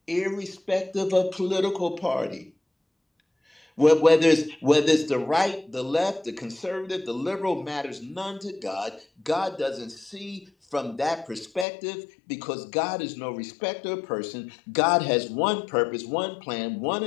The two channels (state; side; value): drops out; right; at 11.7 s